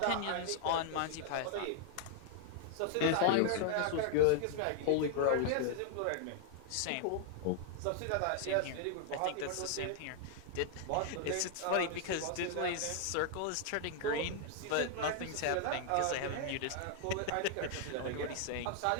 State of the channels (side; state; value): both; different; correlation 0.00